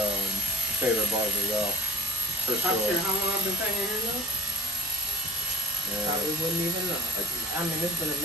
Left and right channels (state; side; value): normal; both; correlation 0.50